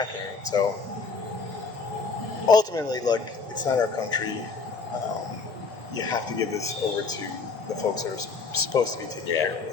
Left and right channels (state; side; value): quieter; right; 4.6 dB